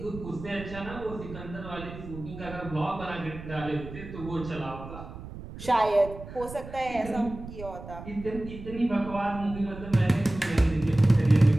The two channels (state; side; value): noise; right; rumble, 13 dB below the sound